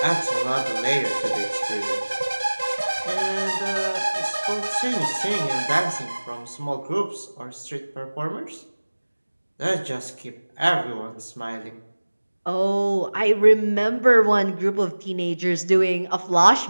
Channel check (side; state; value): both; inverted; correlation -1.00